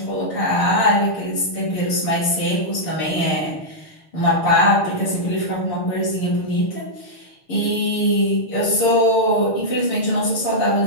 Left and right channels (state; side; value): late; right; 6.7 ms